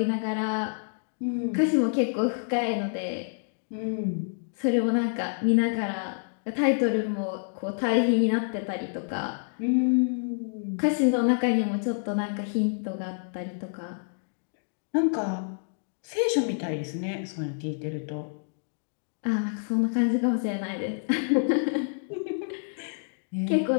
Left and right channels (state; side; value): silent; right; digital silence